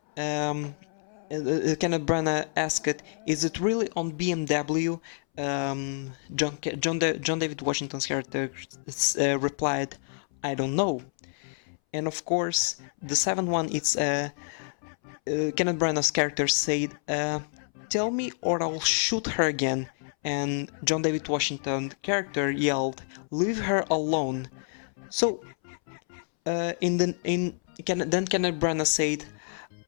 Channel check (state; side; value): silent; right; 59 dB below the other